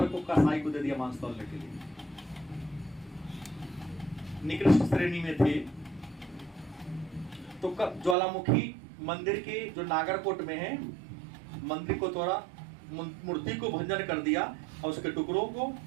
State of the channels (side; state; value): left; drops out; at 8.2 s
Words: को कसाई को दे दिया मांस तौलने के लिए। निकृष्ट श्रेणी में थे। तो ज्वालामुखी मंदिर के जो नागरकोट में है, मंदिर को तोड़ा, मूर्ति को भंजन कर दिया और उसके टुकड़ों को